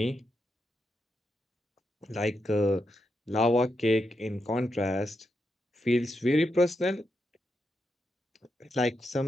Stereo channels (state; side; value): normal; both; correlation 0.85